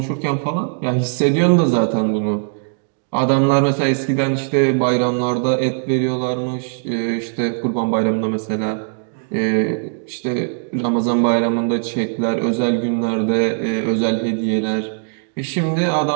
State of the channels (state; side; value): silent; left; digital silence